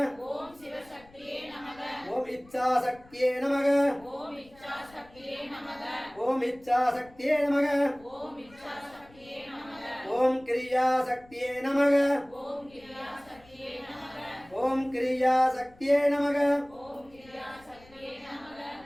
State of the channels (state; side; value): noise; left; rumble, 25 dB below the sound